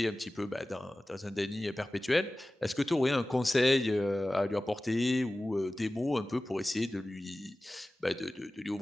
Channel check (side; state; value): both; normal; correlation 0.96